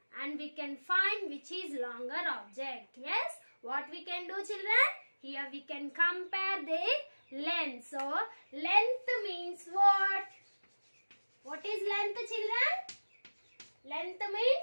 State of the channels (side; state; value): both; inverted; correlation -1.00